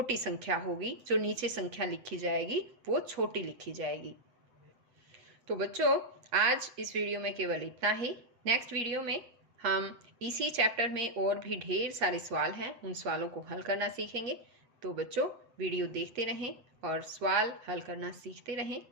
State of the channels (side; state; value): left; late; 7.9 ms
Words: संख्या होगी, जो नीचे संख्या लिखी जाएगी वो छोटी लिखी जाएगी। तो बच्चों, आज इस वीडियो में केवल इतना ही। नेक्स्ट वीडियो में हम इसी चैप्टर में और भी ढेर सारे सवाल हैं, उन सवालों को हल करना सीखेंगे। तो बच्चों, वीडियो देखते रहें और सवाल हल करना सीखते रहें।